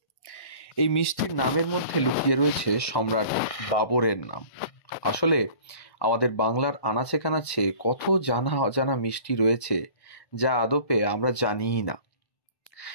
এই মিষ্টির নামের মধ্যে লুকিয়ে রয়েছে সম্রাট বাবরের নাম। আসলে আমাদের বাংলার আনাচে কানাচে কত জানা অজানা মিষ্টি রয়েছে যা আদপে আমরা জানিই না।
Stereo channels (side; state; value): right; late; 1.1 ms